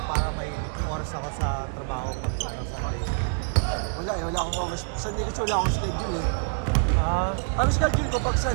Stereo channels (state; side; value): silent; left; 61 dB below the other